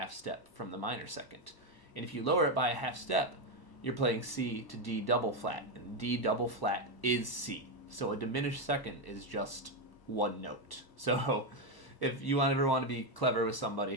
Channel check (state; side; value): late; right; 1.0 ms